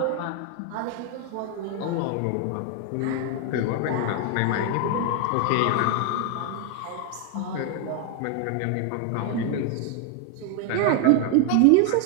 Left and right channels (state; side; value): different; both; correlation 0.01